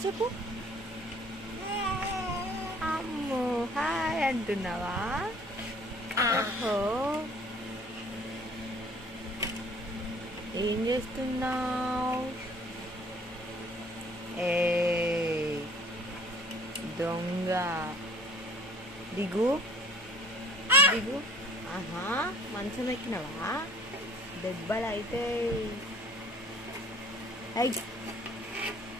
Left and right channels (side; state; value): left; noise; hum, 24 dB below the sound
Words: చెప్పు. అమ్మో హాయ్ అంటున్నావా? ఓహో, ఏం చేస్తున్నావు? ఏ దొంగ, దిగు దిగు. ఆహా, మంచం ఎక్కినవా? దెబ్బలు అయితే